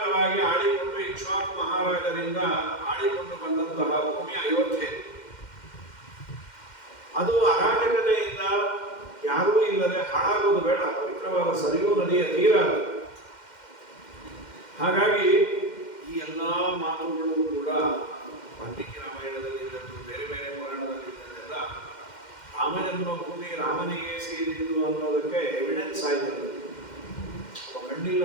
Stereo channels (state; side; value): late; right; 2.1 ms